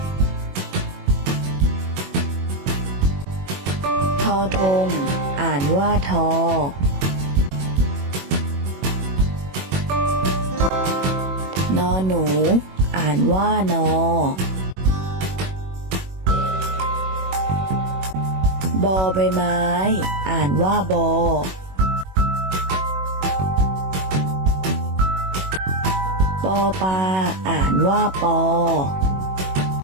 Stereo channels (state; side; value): late; left; 21 ms